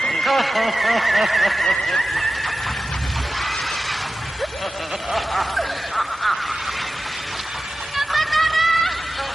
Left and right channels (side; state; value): both; normal; correlation 0.94